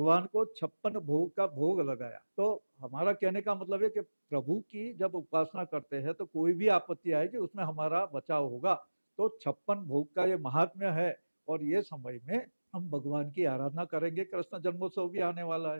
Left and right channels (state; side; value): inverted; both; correlation -1.00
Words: को 56 भोग का भोग लगाया। तो हमारा कहने का मतलब है कि प्रभु की जब उपासना करते हैं तो कोई भी आपत्ति आएगी उसमें हमारा बचाव होगा। तो 56 भोग का ये महात्म्य है, और ये समय में हम भगवान की आराधना करेंगे। कृष्ण जन्मोत्सव भी आने वाला